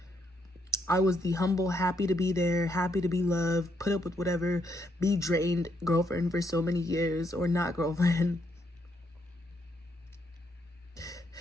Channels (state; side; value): normal; both; correlation 0.76